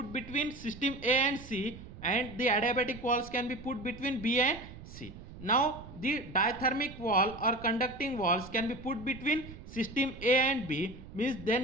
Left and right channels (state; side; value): noise; right; rumble, 15 dB below the sound